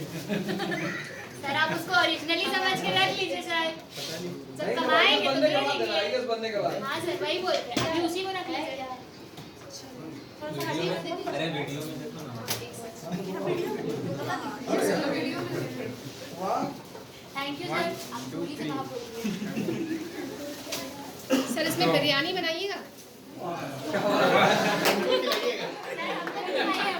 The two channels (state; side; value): identical; both; correlation 1.00